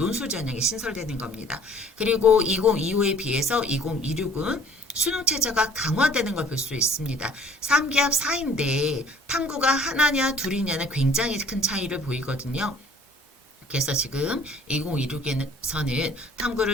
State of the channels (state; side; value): normal; both; correlation 0.55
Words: 전형이 신설되는 겁니다. 그리고 2025에 비해서 2026은 수능 체제가 강화되는 걸 볼 수 있습니다. 3기합 4인데 탐구가 하나냐 둘이냐는 굉장히 큰 차이를 보이거든요. 그래서 지금 2026에서는